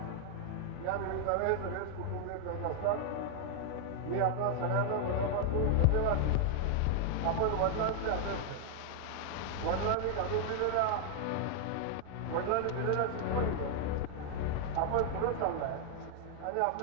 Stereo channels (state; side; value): different; both; correlation 0.00